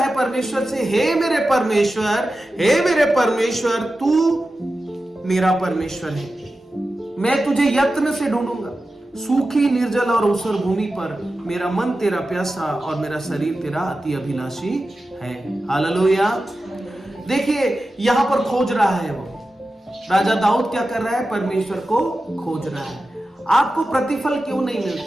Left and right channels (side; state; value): both; normal; correlation 0.93